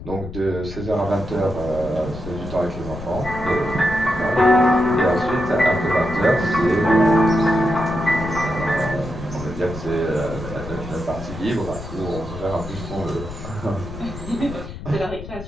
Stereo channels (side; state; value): left; noise; rumble, 11 dB below the sound